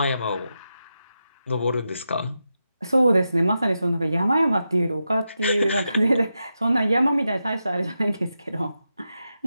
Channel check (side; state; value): both; inverted; correlation -0.88